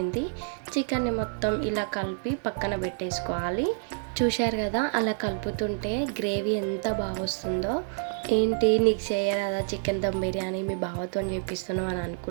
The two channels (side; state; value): left; silent; digital silence